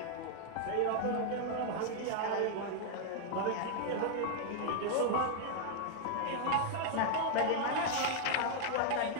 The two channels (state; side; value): different; both; correlation 0.00